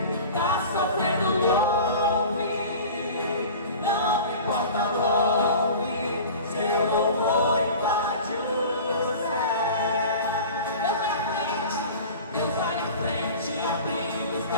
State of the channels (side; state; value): both; inverted; correlation -0.38